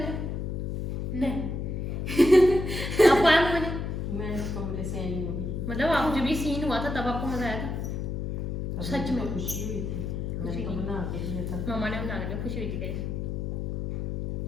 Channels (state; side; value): noise; left; hum, 3 dB below the sound